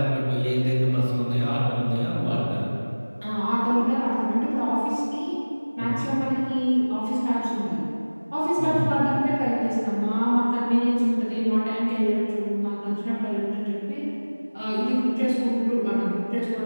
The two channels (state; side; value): inverted; both; correlation -1.00